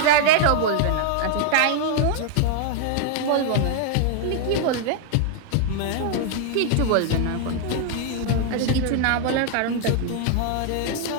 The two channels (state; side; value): different; both; correlation 0.00